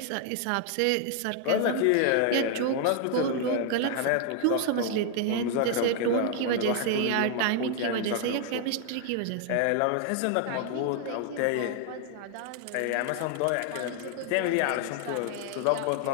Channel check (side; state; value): both; different; correlation 0.00